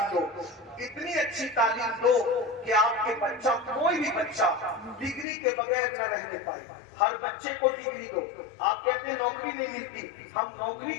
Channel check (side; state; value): right; drops out; at 5.2 s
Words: دو، اتنی اچھی تعلیم دو کہ آپ کے بچہ، کوئی بھی بچہ ڈگری کے بغیر نہ رہنے پائے۔ ہر بچے کو ڈگری دو۔ آپ کہتے ہیں نوکری نہیں ملتی، ہم نوکری